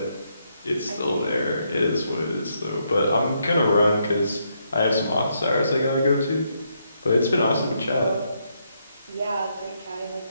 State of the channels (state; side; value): inverted; both; correlation -0.77